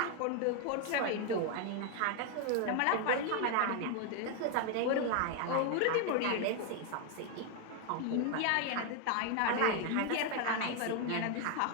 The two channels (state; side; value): different; both; correlation 0.01